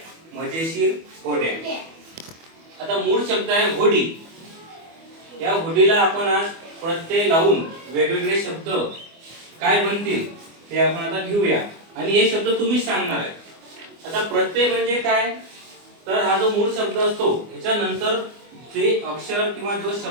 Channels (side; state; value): left; late; 24 ms